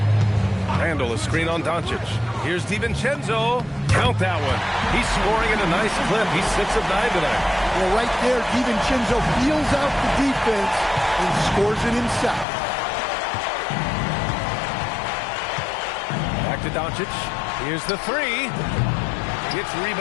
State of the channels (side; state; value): right; drops out; at 12.5 s